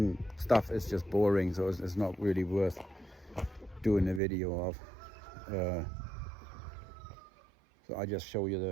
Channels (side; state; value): left; drops out; at 4.2 s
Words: stuff is just boring, so it's not really worth doing a video of. So I just show